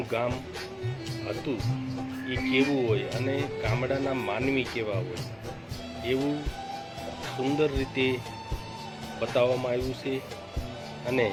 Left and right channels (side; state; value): both; identical; correlation 1.00